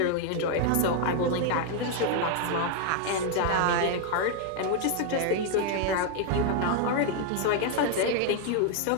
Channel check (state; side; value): different; both; correlation 0.00